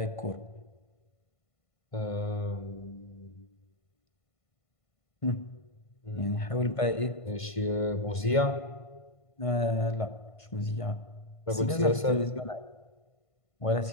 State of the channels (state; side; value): late; right; 1.5 ms